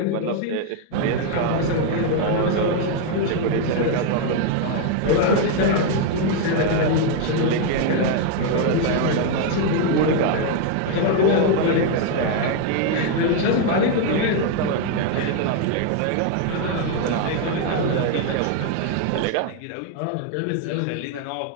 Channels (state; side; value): different; both; correlation 0.01